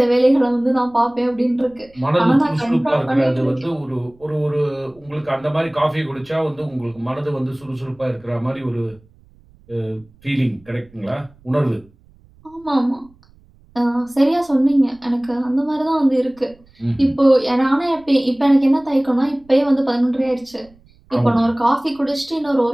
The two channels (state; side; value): noise; right; rumble, 29 dB below the sound